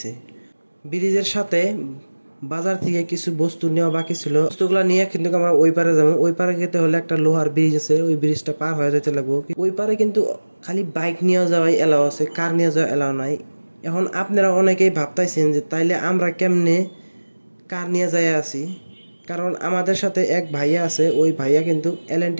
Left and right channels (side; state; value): both; inverted; correlation -1.00